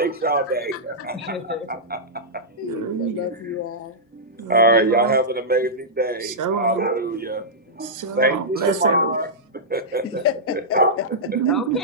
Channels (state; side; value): normal; both; correlation -0.12